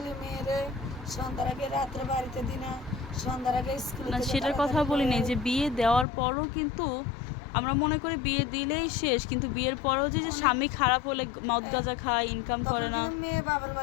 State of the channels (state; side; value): drops out; right; at 6.1 s